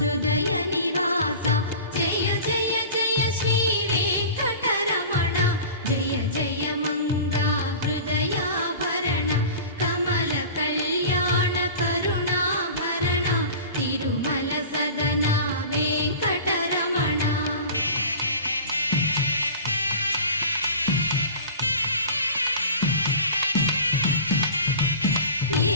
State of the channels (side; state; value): both; inverted; correlation -0.38